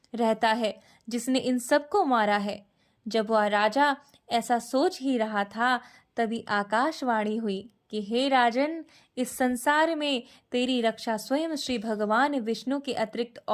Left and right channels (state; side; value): identical; both; correlation 1.00